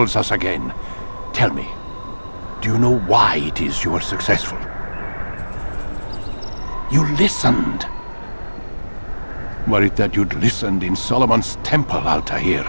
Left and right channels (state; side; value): inverted; both; correlation -1.00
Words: us again. Tell me, do you know why it is you were successful? You listened. Were it that you'd listened in Solomon's temple, Altair,